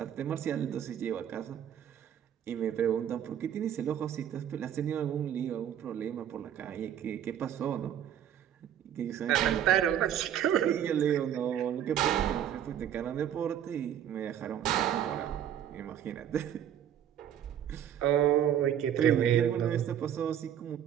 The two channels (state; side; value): quieter; left; 9.9 dB